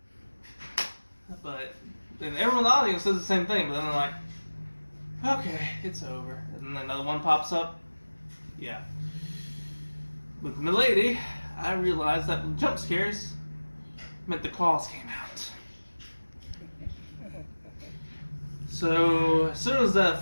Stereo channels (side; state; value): both; inverted; correlation -1.00